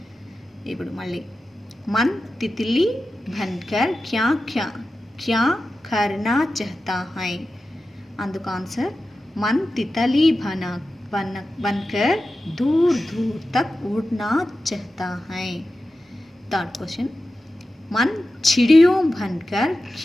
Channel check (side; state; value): both; normal; correlation 0.93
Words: ఇప్పుడు మళ్ళీ मन तितली बनकर क्या क्या क्या करना चाहता है, అందుకు ఆన్సర్ मन तितली बनकर दूर दूर तक उड़ना चाहता है. थर्ड क्वेश्चन मन चिड़ियों बनकर